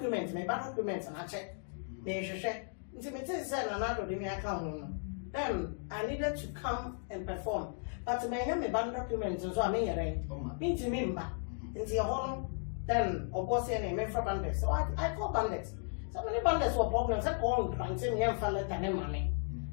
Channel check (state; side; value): silent; right; 54 dB below the other